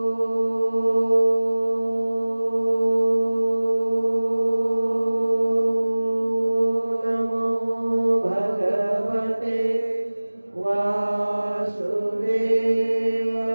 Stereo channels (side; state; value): both; inverted; correlation -1.00